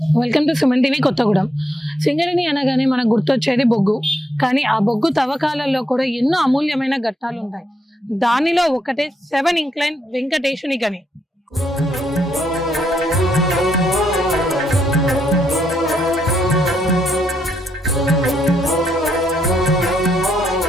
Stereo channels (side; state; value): both; normal; correlation 0.78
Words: Welcome to Suman TV Kothagudem. Singareni అనగానే మనకు గుర్తొచ్చేది బొగ్గు. కానీ ఆ బొగ్గు తవ్వకాలలో కూడా ఎన్నో అమూల్యమైన ఘట్టాలుంటాయి. దానిలో ఒకటే 7 ఇంక్లైన్ వెంకటేశుని గని.